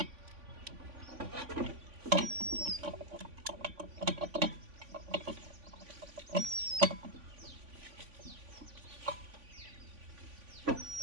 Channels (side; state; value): left; late; 3.5 ms